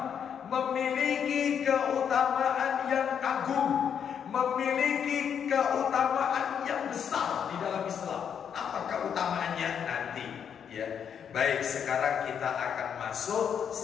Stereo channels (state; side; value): quieter; right; 7.9 dB